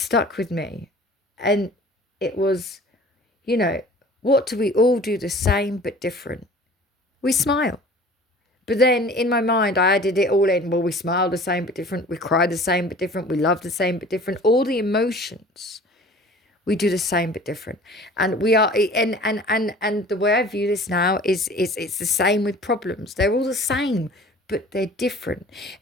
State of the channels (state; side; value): normal; both; correlation 0.45